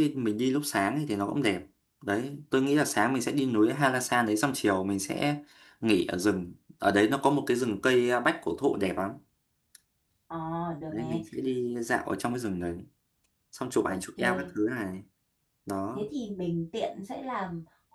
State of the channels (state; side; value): identical; both; correlation 1.00